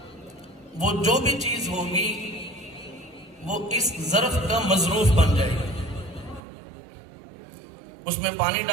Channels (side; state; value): left; drops out; at 6.4 s